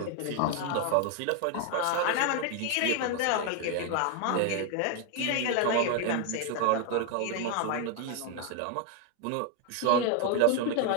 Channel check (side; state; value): both; different; correlation 0.01